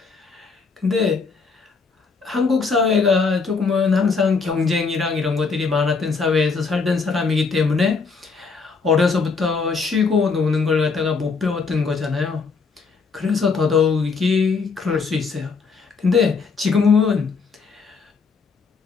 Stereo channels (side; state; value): right; quieter; 4.8 dB